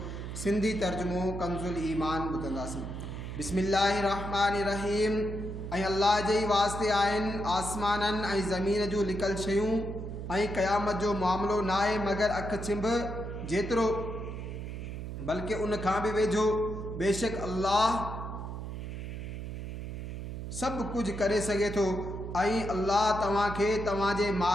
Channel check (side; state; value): right; noise; hum, 7 dB below the sound